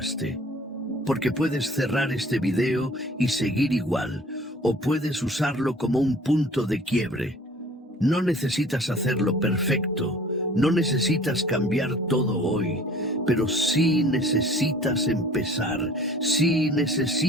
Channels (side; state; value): both; normal; correlation 0.49